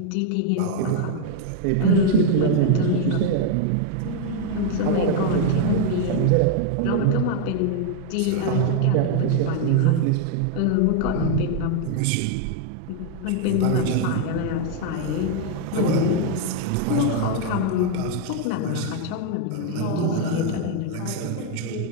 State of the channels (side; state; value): both; different; correlation 0.00